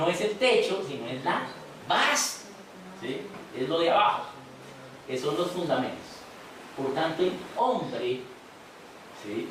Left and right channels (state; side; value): identical; both; correlation 1.00